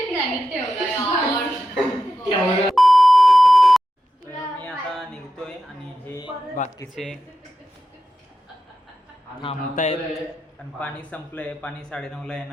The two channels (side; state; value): both; normal; correlation 0.90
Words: मी आता निघतोय आणि हे बाकीचे थांबतायत पण पाणी संपलंय. पाणी 9:30ला